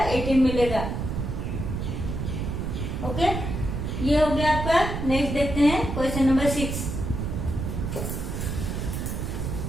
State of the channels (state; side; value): noise; right; rumble, 3 dB below the sound